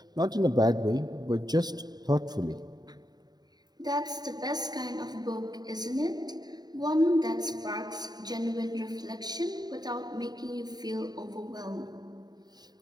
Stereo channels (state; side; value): late; left; 0.20 ms